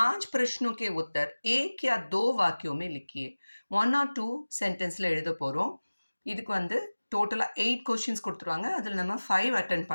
प्रश्नों के उत्तर एक या 2 वाक्यों में लिखिए. 1 or 2 சென்டென்ஸில் எழுத போகிறோம். இதுக்கு வந்து டோட்டலாக 8 கொஷின்ஸ் கொடுத்துருவாங்க. அதில் நம்ம 5 அட்டென்ட்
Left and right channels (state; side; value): inverted; both; correlation -1.00